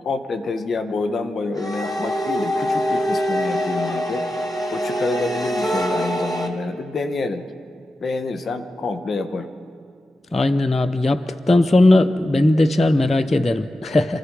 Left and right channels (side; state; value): both; normal; correlation 0.91